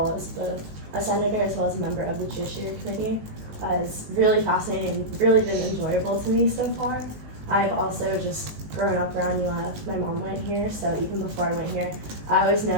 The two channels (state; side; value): late; left; 19 ms